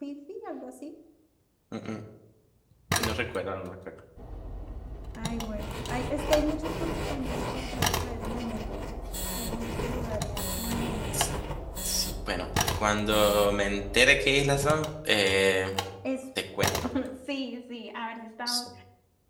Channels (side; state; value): both; identical; correlation 1.00